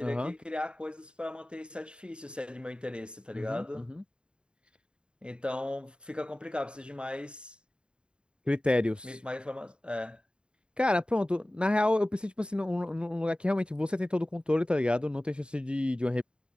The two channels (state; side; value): late; left; 0.052 ms